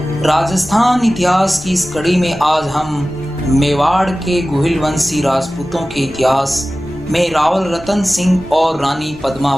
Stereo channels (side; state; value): both; normal; correlation 0.96